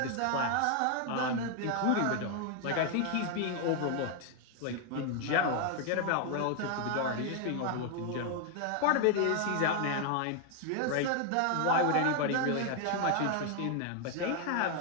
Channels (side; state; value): both; different; correlation 0.01